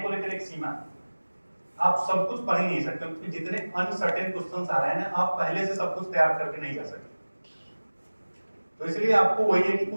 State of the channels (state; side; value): inverted; both; correlation -1.00